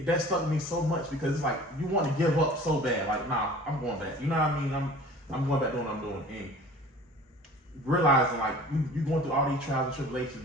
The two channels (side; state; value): both; normal; correlation 0.45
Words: that stuck me so much because it's like you want to give up so bad. Like, nah, I'm going back. You know what I mean? I'm going back doing what I'm doing. And realizing like you're going through all these trials and tribulations